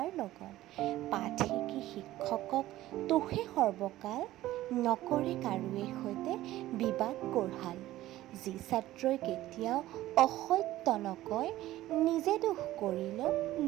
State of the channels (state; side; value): quieter; left; 15.3 dB